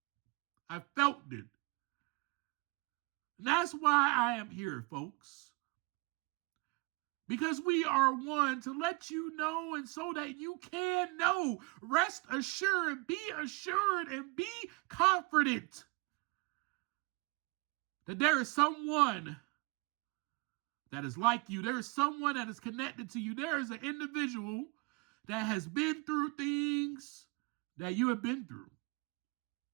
I felt it. That's why I am here, folks. Because we are one to let you know, and so that you can know. Rest assured, be assured, and be confident that there is someone that is like you. There is someone that is connected to you. There is an individual that has been through things that you have been through.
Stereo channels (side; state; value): left; quieter; 28.9 dB